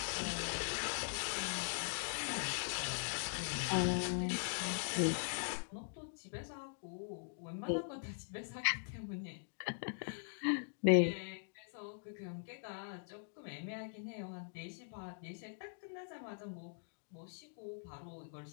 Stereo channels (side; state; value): right; silent; digital silence